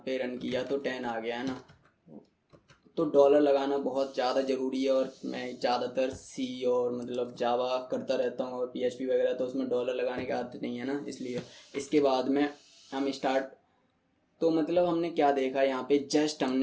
पे रन किया तो 10 आ गया, है ना। तो डॉलर लगाना बहुत ज़्यादा ज़रूरी है, और मैं ज़्यादातर सी और मतलब जावा करता रहता हूँ और पीएचपी वगैरह, तो उसमें डॉलर लगाने की आदत नहीं है ना, इसलिए। इसके बाद में हम स्टार्ट, तो मतलब हमने क्या देखा, यहाँ पे जस्ट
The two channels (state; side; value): identical; both; correlation 1.00